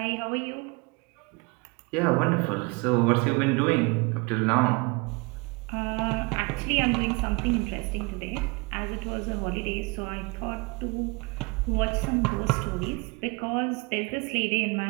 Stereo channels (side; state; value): left; quieter; 28.4 dB